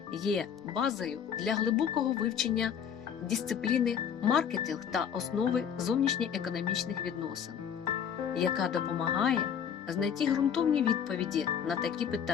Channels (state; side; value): quieter; right; 8.0 dB